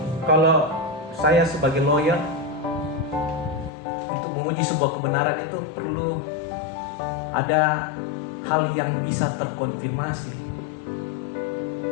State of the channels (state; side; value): drops out; right; at 3.7 s